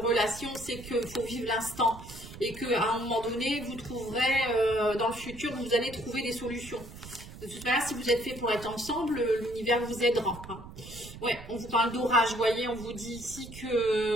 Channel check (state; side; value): noise; right; rumble, 14 dB below the sound